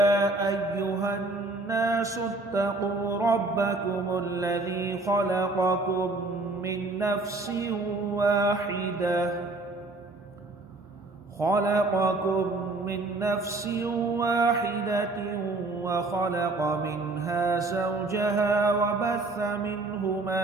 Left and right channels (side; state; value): left; quieter; 3.1 dB